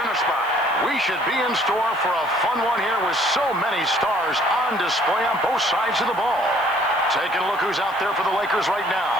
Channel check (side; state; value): right; noise; hiss, 24 dB below the sound